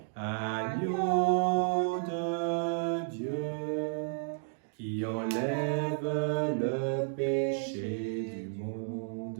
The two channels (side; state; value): left; silent; digital silence